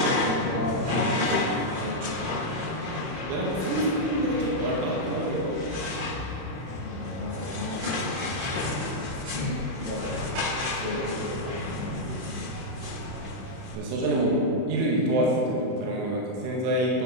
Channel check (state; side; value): late; left; 31 ms